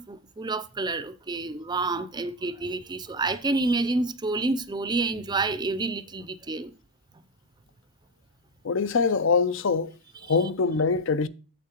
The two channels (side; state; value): both; normal; correlation 0.04